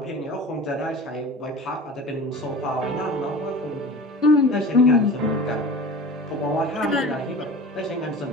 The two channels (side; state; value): both; normal; correlation 0.37